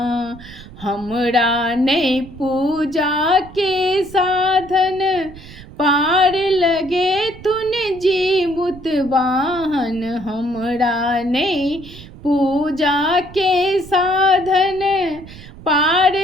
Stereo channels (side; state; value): right; noise; rumble, 17 dB below the sound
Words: हमरा नहि पूजा के साधन, पार लगे तुन जीमुत वाहन। हमरा नहीं पूजा के साधन, पार